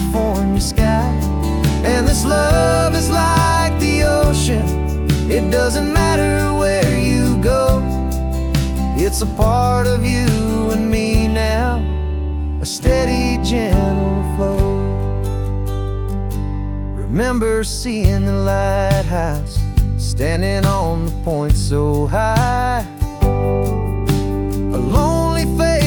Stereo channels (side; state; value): both; identical; correlation 1.00